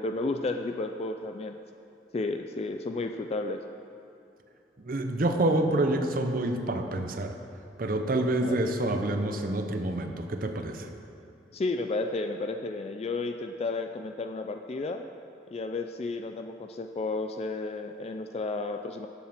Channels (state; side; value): normal; both; correlation 0.51